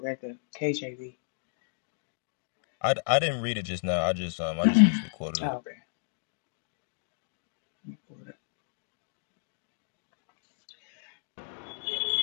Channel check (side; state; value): right; silent; digital silence